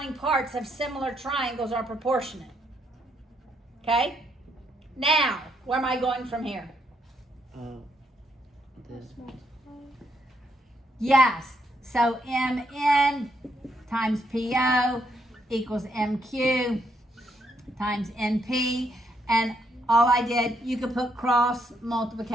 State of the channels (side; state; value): both; normal; correlation 0.75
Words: parts of similar triangles are proportionate. Okay? Now, where am I going from here? Yes. So MN times PO equals MQ times NP. And all I did, you could put cross